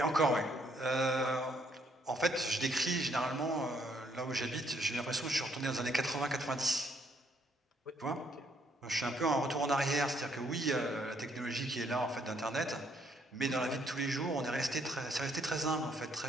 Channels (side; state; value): both; normal; correlation 0.69